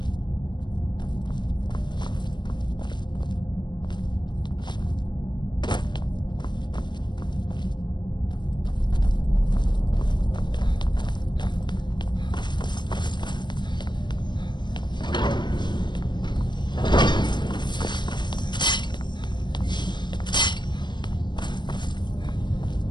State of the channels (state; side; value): late; right; 0.22 ms